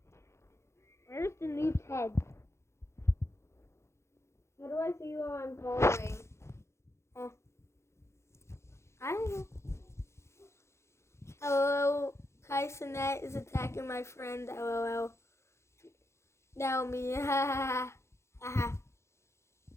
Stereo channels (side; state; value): right; late; 0.13 ms